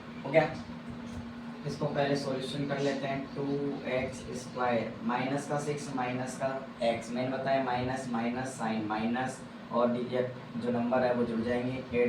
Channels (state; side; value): identical; both; correlation 1.00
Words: हो गया। इसको पहले सॉल्यूशन कर लेते हैं। 2x स्क्वायर माइनस का 6 माइनस का x, मैंने बताया माइनस माइनस साइन माइनस और डिजिट जो नंबर है वो जुड़ जाएंगे,